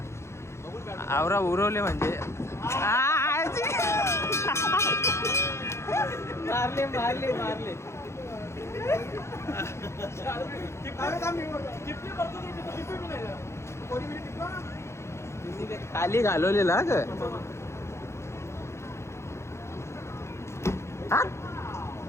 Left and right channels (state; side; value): late; right; 0.13 ms